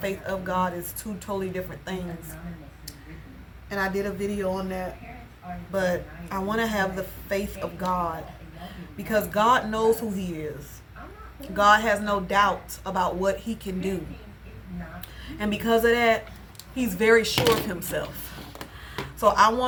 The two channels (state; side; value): identical; both; correlation 1.00